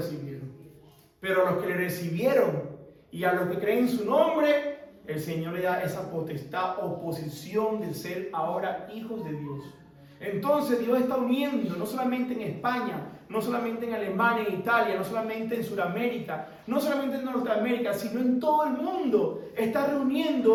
Pero a los que le recibieron y a los que creen en su nombre, el Señor le da esa potestad o posición de ser ahora hijos de Dios. Entonces Dios está uniendo, no solamente en España, no solamente en Alemania, en Italia, no solamente en Sudamérica, no solamente en Norteamérica, sino en todo el mundo. Está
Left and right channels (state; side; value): identical; both; correlation 1.00